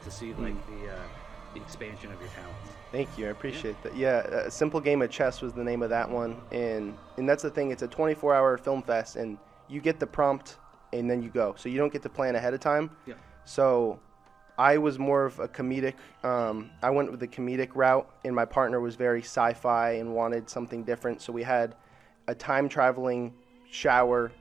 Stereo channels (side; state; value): left; quieter; 5.5 dB